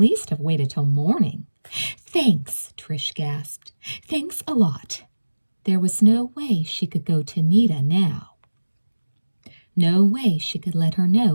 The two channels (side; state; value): both; inverted; correlation -1.00